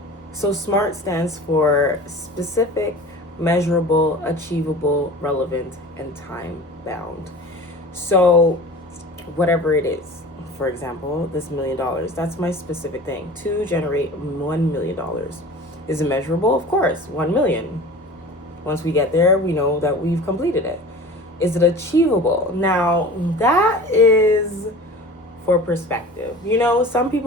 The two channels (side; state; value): both; normal; correlation 0.39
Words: So SMART stands for specific, measurable, achievable, relevant, and time bound. So whatever it is, for example, this $1 million, that's my specific thing to generate $1 million. Is it measurable? Of course, 1 million. Once we get there, we know that we've completed it. Is it achievable? Now, that is for perspective. Some